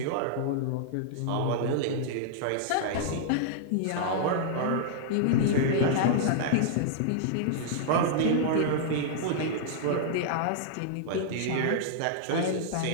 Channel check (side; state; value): both; different; correlation -0.01